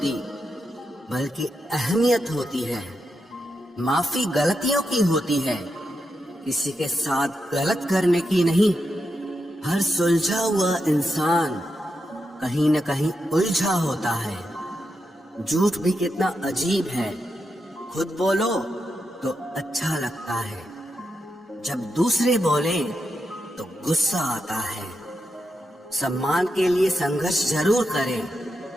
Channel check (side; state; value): both; normal; correlation 0.85